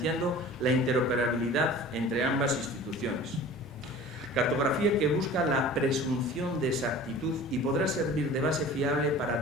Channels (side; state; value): both; normal; correlation 0.42